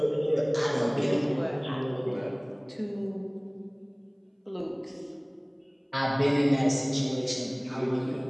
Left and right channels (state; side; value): identical; both; correlation 1.00